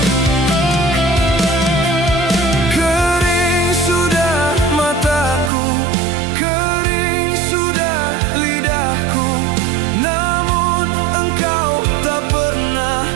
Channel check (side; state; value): left; drops out; at 5.5 s